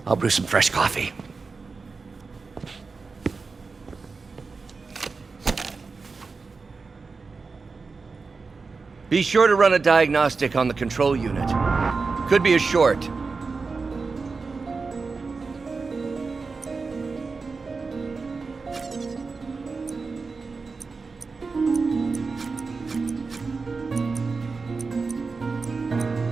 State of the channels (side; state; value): left; quieter; 4.4 dB